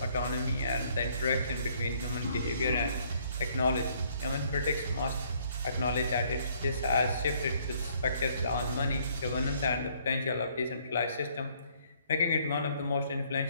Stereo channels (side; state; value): both; inverted; correlation -0.65